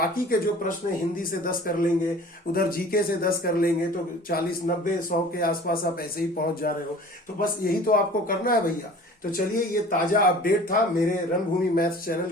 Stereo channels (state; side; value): normal; both; correlation 0.45